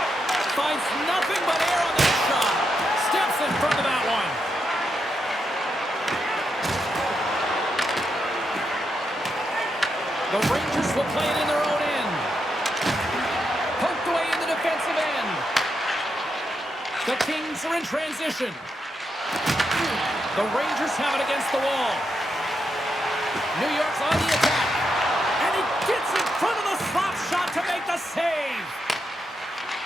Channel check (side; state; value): both; normal; correlation 0.83